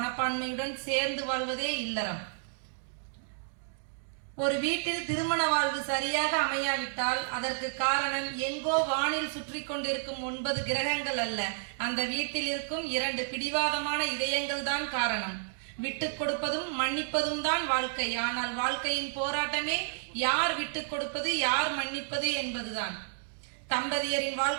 சேர்ந்து வாழ்வதே இல்லறம். ஒரு வீட்டில் திருமண வாழ்வு சரியாக அமையாவிட்டால் அதற்கு காரணம் எங்கோ வானில் சுற்றி கொண்டிருக்கும் 9 கிரகங்கள் அல்ல, அந்த வீட்டில் இருக்கும் 2 பிடிவாதமான இதயங்கள் தான் காரணம். விட்டுக் கொடுப்பதும் மன்னிப்பதும் தான் வாழ்க்கை. ஆனால் வாழ்க்கையின் போராட்டமே யார் விட்டுக் கொடுப்பது, யார் மன்னிப்பது என்பதுதான். தம்பதியரின்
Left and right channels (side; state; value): left; silent; digital silence